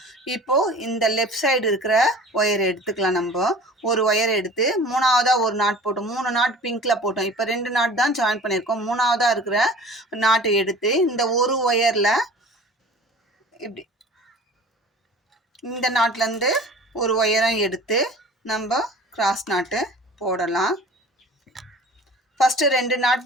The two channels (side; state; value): both; normal; correlation 0.43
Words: இப்போது இந்த லெஃப்ட் சைடு இருக்கிற ஒயர் எடுத்துக்கலாம். நம்ம ஒரு ஒயர் எடுத்து மூணாவதாக ஒரு நாட் போட்டோம். 3 நாட் பிங்க்கில் போட்டோம். இப்போ 2 நாட் தான் ஜாயின் பண்ணியிருக்கோம். மூணாவதாக இருக்கிற நாட்டை எடுத்து இந்த ஒரு ஒயரில் இப்படி இந்த நாட்டிலேருந்து ஒரு ஒயரம் எடுத்து நம்ம கிராஸ் நாட்டு போடலாம். ஃபஸ்ட்டு 2 நாட்